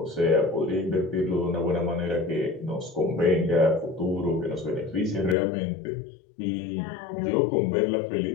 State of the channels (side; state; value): right; drops out; at 5.4 s